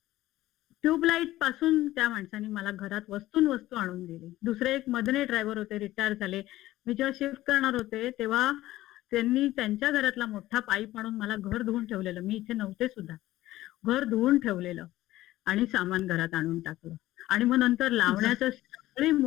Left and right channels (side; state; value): right; quieter; 15.9 dB